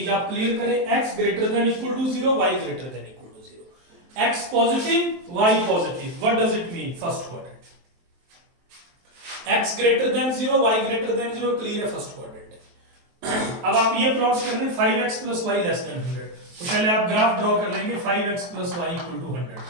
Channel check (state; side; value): late; left; 23 ms